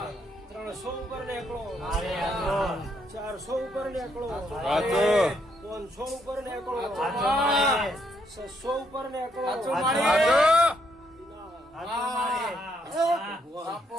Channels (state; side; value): normal; both; correlation 0.74